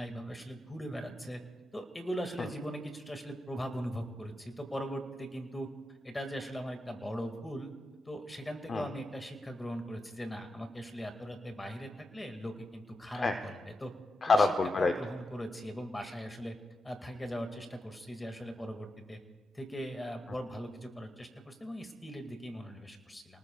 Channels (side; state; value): both; normal; correlation 0.88